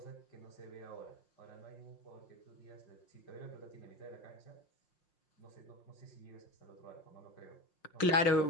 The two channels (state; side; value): late; right; 5.6 ms